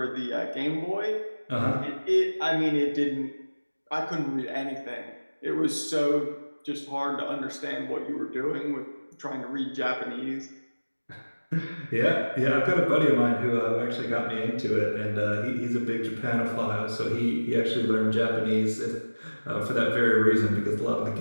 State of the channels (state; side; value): inverted; both; correlation -1.00